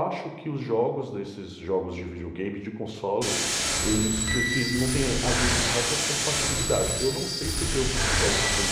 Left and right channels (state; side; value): identical; both; correlation 1.00